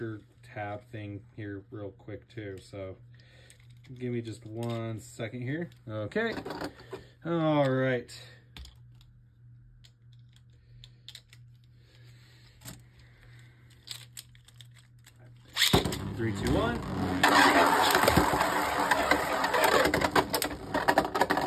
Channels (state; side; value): identical; both; correlation 1.00